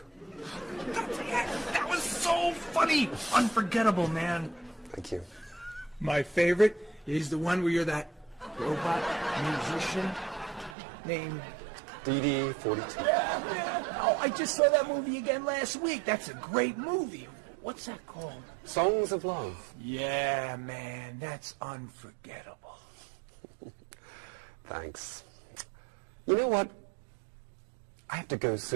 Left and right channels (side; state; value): left; drops out; at 10.8 s